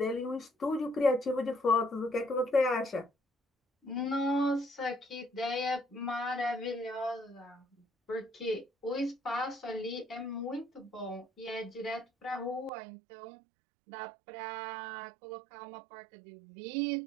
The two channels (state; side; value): drops out; left; at 12.7 s